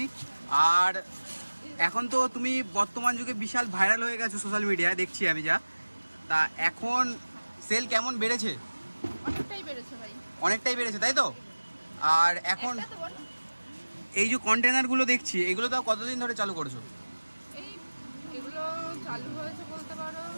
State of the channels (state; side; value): inverted; both; correlation -1.00